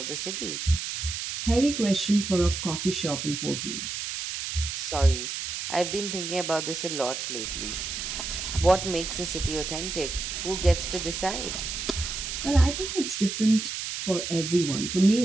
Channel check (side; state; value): right; noise; hiss, 5 dB below the sound